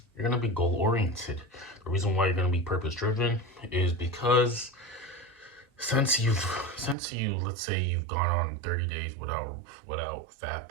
You're going to be goal oriented. The reason why you're going to be purpose driven is because since you let's say you've gone on 30 days without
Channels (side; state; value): left; drops out; at 7.0 s